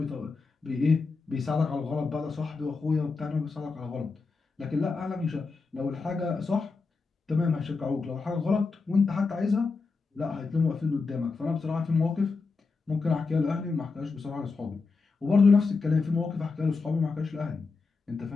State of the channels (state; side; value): quieter; right; 4.3 dB